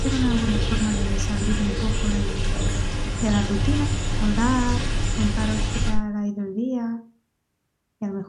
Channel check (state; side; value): identical; both; correlation 1.00